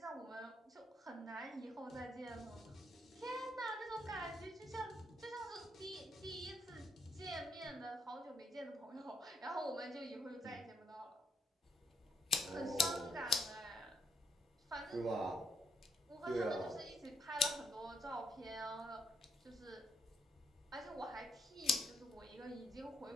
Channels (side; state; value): both; normal; correlation 0.74